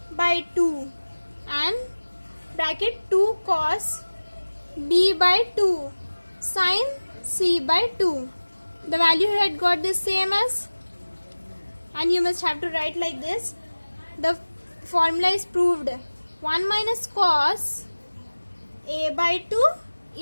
by 2 and bracket 2 cos b by 2 sin c by 2. The value you had got the same as, and you must have to write like this. The formula is proved. 1 minus cos a by 2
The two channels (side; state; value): both; inverted; correlation -1.00